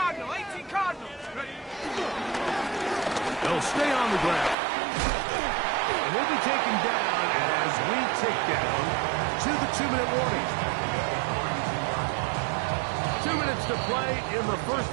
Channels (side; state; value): left; drops out; at 4.5 s